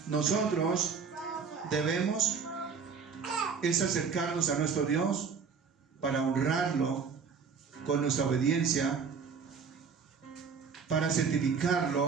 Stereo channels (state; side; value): quieter; left; 5.8 dB